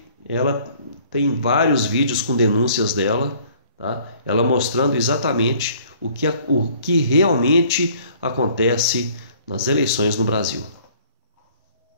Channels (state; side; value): inverted; both; correlation -0.56